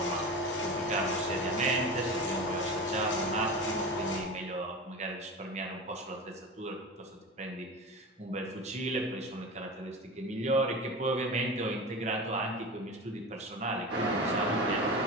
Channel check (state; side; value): normal; both; correlation 0.28